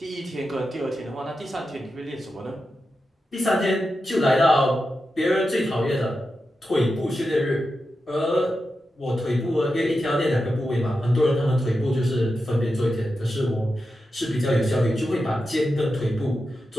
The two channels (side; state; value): both; normal; correlation 0.90